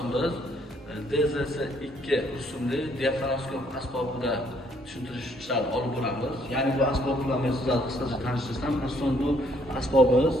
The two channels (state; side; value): normal; both; correlation 0.67